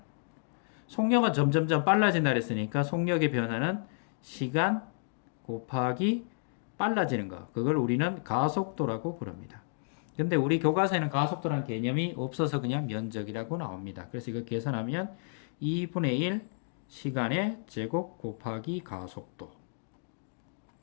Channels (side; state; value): right; silent; digital silence